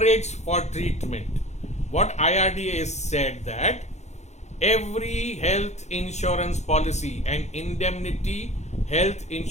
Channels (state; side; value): late; right; 0.33 ms